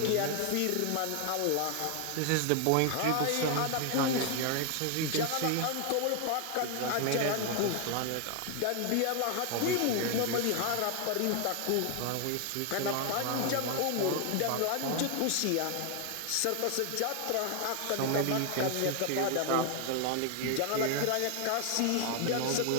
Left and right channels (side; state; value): both; different; correlation 0.00